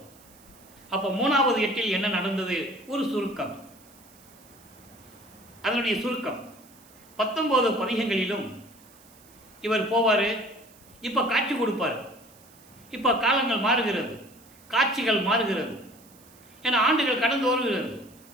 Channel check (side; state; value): right; noise; hiss, 25 dB below the sound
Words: அப்போ 3வது எட்டில் என்ன நடந்தது, ஒரு சுருக்கம். அதனுடைய சுருக்கம் 19 பதிகங்களிலும் இவர் போவார். இப்போ காட்சி கொடுப்பார். இப்போ காலங்கள் மாறுகிறது, காட்சிகள் மாறுகிறது. ஏன்னா ஆண்டுகள் கடந்து வருகிறது.